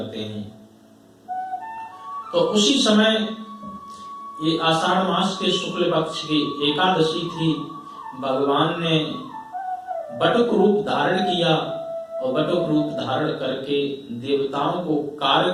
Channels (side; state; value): both; identical; correlation 1.00